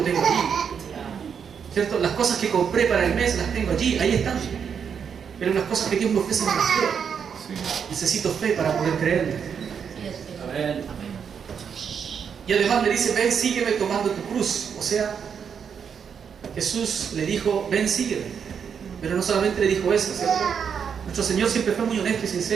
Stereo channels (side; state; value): left; quieter; 7.1 dB